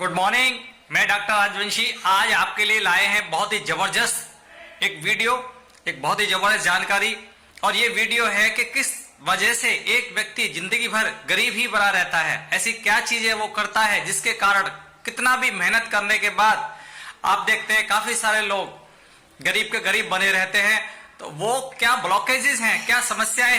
Good morning, मैं doctor Rajvanshi आज आपके लिए लाए हैं बहुत ही जबरदस्त एक वीडियो, एक बहुत ही जबरदस्त जानकारी। और ये वीडियो है कि किस वजह से एक व्यक्ति जिंदगी भर गरीब ही बना रहता है। ऐसी क्या चीजें वो करता है जिसके कारण कितना भी मेहनत करने के बाद आप देखते हैं काफी सारे लोग गरीब के गरीब बने रहते हैं। तो वो क्या ब्लॉकेजेस हैं, क्या समस्याएं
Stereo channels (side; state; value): both; identical; correlation 1.00